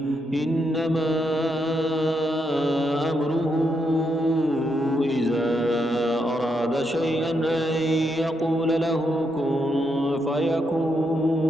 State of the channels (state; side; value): normal; both; correlation 0.80